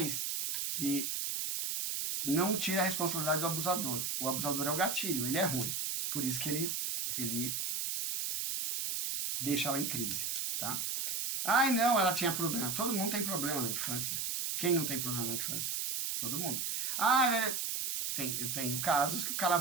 que não tira a responsabilidade do abusador. O abusador é o gatilho, ele é ruim. Por isso que ele deixa ela em crise, tá? Ai, não, ela tinha problema. Todo mundo tem problema na infância. Quem não tem problema na infância? Todo mundo. Ah, eu tenho casos que o cara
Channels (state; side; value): noise; right; hiss, 1 dB below the sound